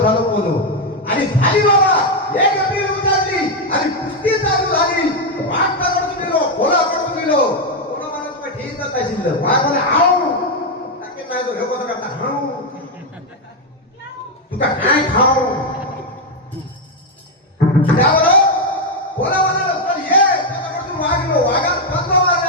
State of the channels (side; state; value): both; normal; correlation 0.03